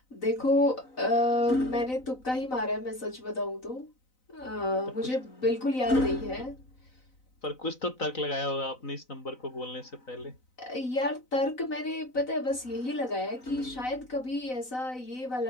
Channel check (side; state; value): right; late; 3.9 ms